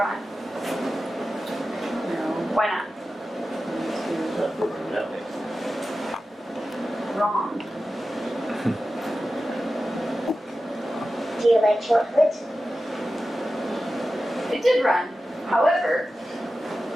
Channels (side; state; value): both; normal; correlation 0.94